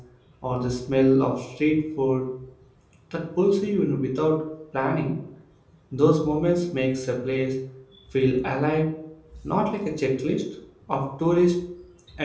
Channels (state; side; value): identical; both; correlation 1.00